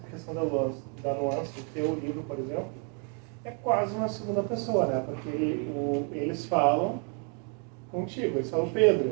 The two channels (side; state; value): left; quieter; 39.1 dB